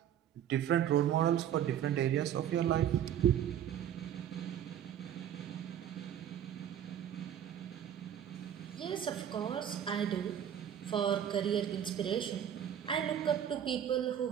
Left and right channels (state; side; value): quieter; left; 9.9 dB